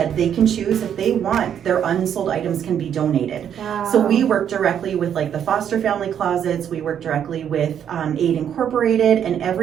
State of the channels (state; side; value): quieter; left; 9.0 dB